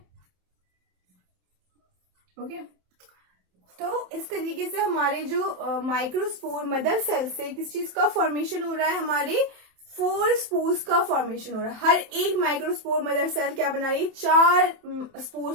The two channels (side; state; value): left; late; 27 ms